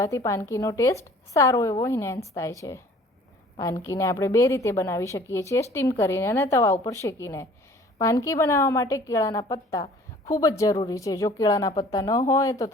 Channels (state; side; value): normal; both; correlation 0.51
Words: પાનકીનો ટેસ્ટ સારો એવો ઇન્હેન્સ થાય છે. પાનકીને આપણે 2 રીતે બનાવી શકીએ છીએ, સ્ટીમ કરીને અને તવા ઉપર શેકીને. પાનકી બનાવવા માટે કેળાના પત્તા ખૂબ જ જરૂરી છે. જો કેળાના પત્તા ન હોય તો